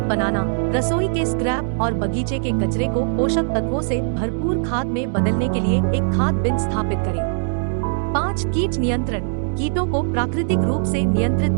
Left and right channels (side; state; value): left; silent; digital silence